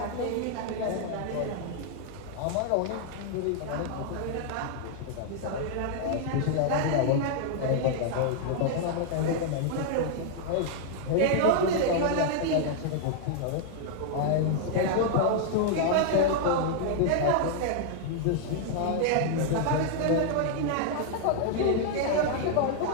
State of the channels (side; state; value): both; different; correlation -0.01